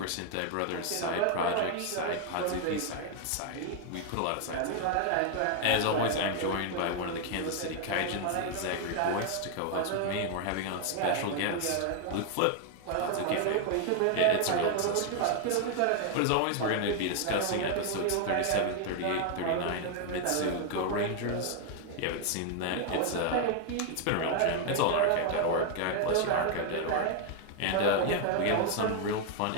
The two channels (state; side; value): different; both; correlation 0.01